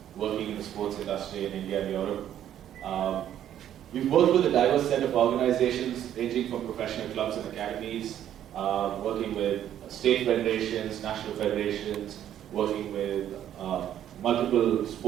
working in the sports industry in India and Europe. We've worked with a diverse set of organizations ranging from professional clubs and academies, working with state federations, national federations, working with multiple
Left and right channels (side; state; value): left; quieter; 10.9 dB